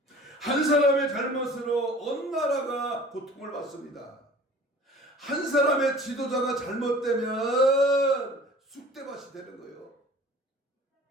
한 사람의 잘못으로 온 나라가 고통을 받습니다. 한 사람의 지도자가 잘못되면 쑥대밭이 되는 거예요.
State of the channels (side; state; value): both; normal; correlation 0.46